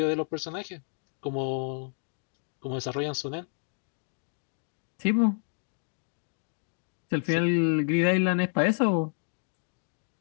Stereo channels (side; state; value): right; silent; digital silence